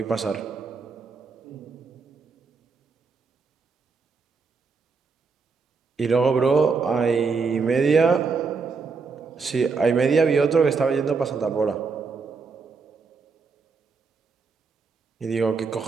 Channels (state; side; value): quieter; left; 4.9 dB